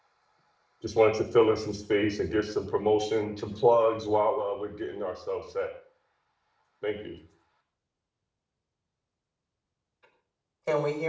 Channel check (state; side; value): identical; both; correlation 1.00